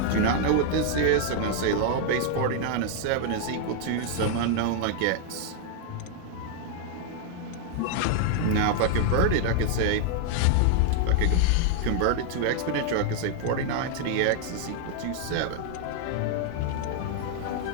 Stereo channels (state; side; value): different; both; correlation 0.00